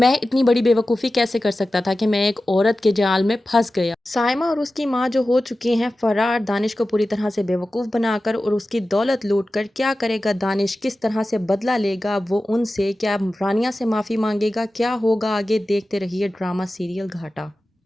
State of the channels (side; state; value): both; normal; correlation 0.95